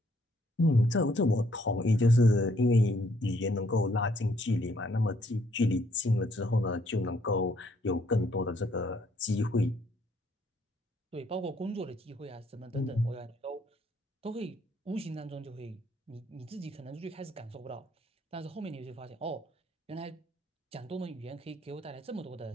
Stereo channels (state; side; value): normal; both; correlation 0.68